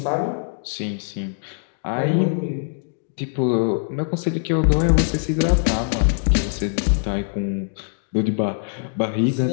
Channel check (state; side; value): silent; right; digital silence